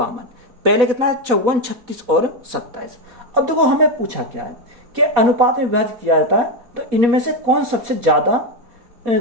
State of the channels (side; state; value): left; late; 4.1 ms